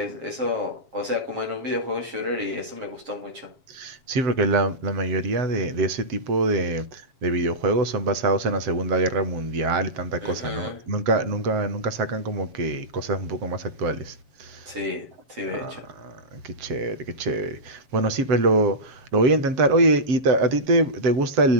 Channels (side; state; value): left; late; 7.4 ms